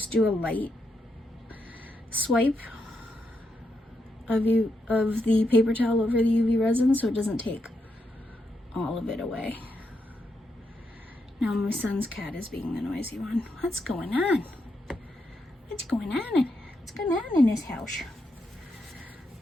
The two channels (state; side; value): normal; both; correlation 0.82